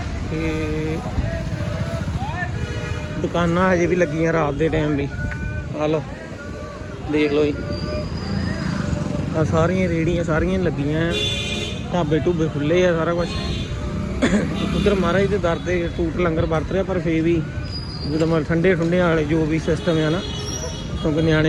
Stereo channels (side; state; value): both; identical; correlation 1.00